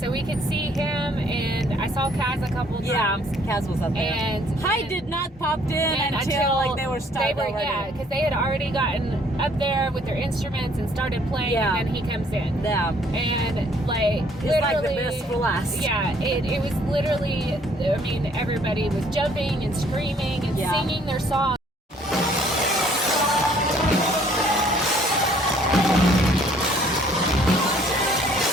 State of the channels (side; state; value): both; normal; correlation 0.61